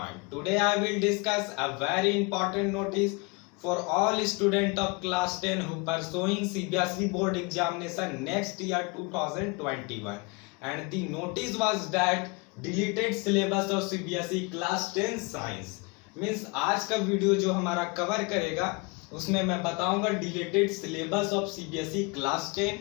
Today I will discuss a very important notice for all students of class 10 who pursuing CBSE board examination next year 2021. And the notice was that deleted syllabus of CBSE class 10 science. Means आज का video जो हमारा cover करेगा उसमें मैं बताऊंगा deleted syllabus of CBSE class 10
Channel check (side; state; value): right; quieter; 29.1 dB